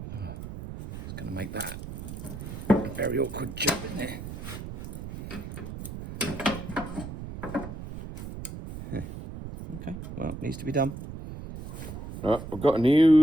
Oh, it's going to make that very awkward job in there. Okay, well, it needs to be done. Right, I've got a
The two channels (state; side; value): noise; right; rumble, 9 dB below the sound